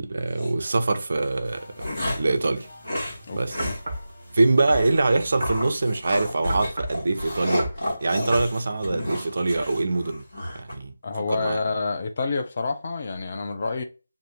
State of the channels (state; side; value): inverted; both; correlation -0.93